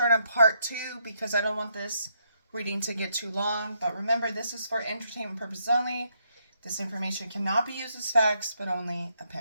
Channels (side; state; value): both; inverted; correlation -0.76